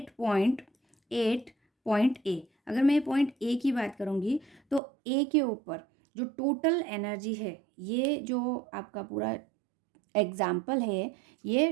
पॉइंट ए, अगर मैं पॉइंट ए की बात करूँगी तो ए के ऊपर जो टोटल एनर्जी है, ये जो आपका पूरा एग्जाम्पल है, ये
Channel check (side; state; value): left; drops out; at 4.8 s